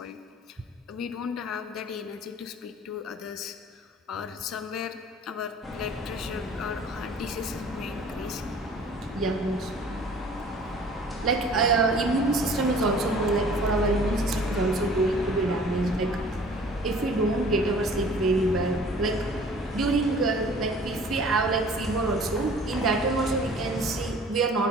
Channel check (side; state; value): both; normal; correlation 0.49